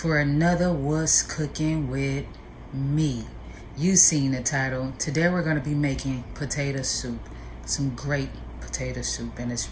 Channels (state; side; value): identical; both; correlation 1.00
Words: another What's Cooking with Me. You seen the title. Today we're going to be making potato soup. Some great potato soup, and it's